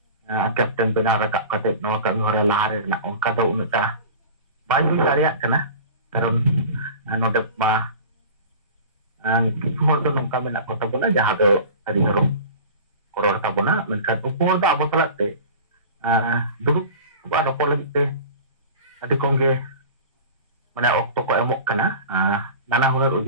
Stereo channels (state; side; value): inverted; both; correlation -0.37